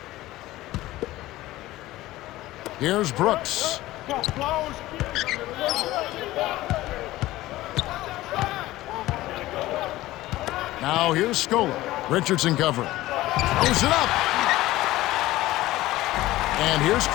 Here's Brooks. Now here's Scola. Richardson covering. Throws it up. And here's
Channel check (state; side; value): quieter; right; 16.9 dB